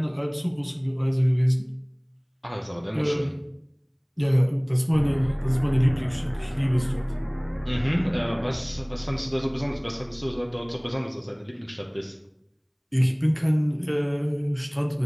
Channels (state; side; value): identical; both; correlation 1.00